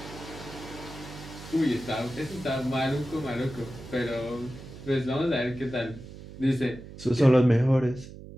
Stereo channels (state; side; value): noise; right; hum, 15 dB below the sound